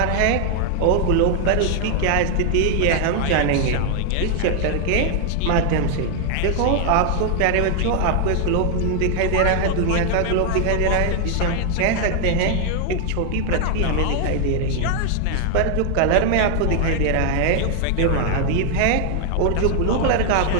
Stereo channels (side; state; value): both; different; correlation 0.00